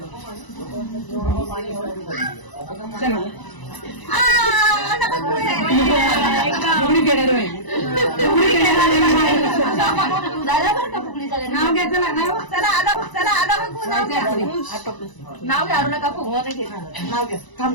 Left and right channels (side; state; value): right; late; 1.0 ms